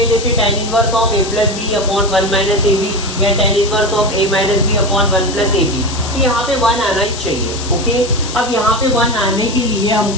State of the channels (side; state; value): left; noise; hiss, 10 dB below the sound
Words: जैसे tan inverse of a plus b upon 1 minus a b या tan inverse of a minus b upon 1 plus a b, तो यहाँ पे 1 आना ही चाहिए। ओके अब यहाँ पे 1 आने के लिए